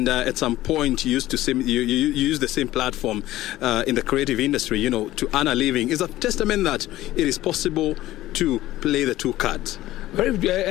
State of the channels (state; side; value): quieter; right; 15.6 dB